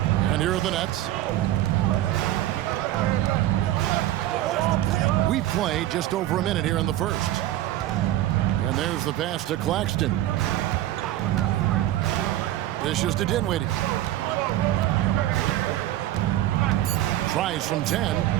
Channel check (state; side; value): quieter; left; 14.0 dB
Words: And here are the Nets. We've played just over a minute here in the first. And there's the pass to Claxton. Dishes to Dinwiddie. Tries from 10.